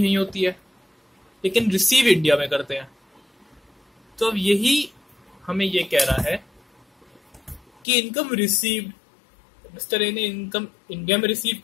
होती है, लेकिन रिसीव इंडिया में करते हैं। तो अब यही हमें ये कह रहा है कि इनकम रिसीव्ड, मिस्टर ए ने इनकम इंडिया में रिसीव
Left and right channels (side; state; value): right; drops out; at 7.8 s